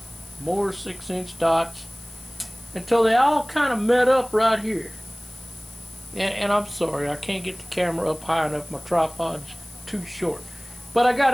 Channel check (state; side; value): noise; left; hiss, 20 dB below the sound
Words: more 6-inch dots, until they all kind of met up right here. And I'm sorry, I can't get the camera up high enough. My tripod's too short. But I